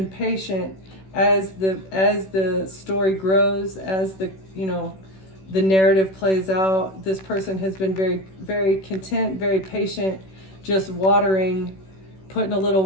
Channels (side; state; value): right; late; 16 ms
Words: patient as the story grows, as the narrative plays out. This person has been very, very content, very patient, just watering, putting a